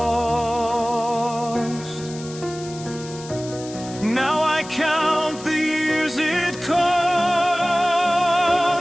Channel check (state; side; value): noise; left; hiss, 16 dB below the sound